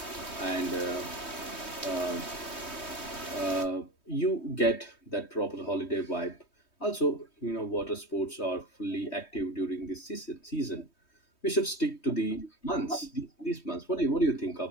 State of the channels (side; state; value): right; late; 3.2 ms